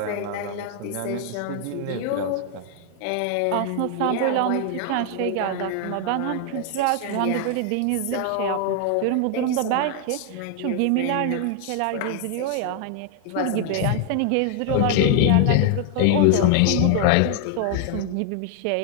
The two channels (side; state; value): both; different; correlation 0.00